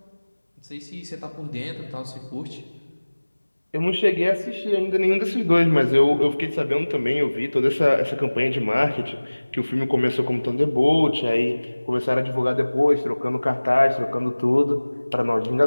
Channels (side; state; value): both; inverted; correlation -1.00